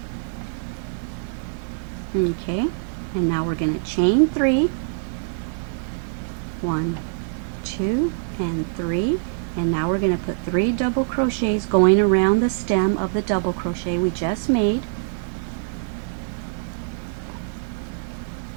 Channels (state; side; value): silent; left; 60 dB below the other